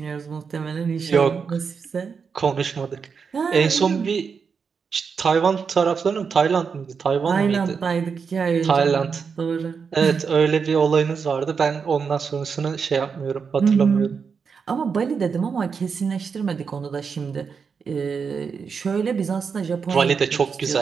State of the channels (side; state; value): left; quieter; 5.9 dB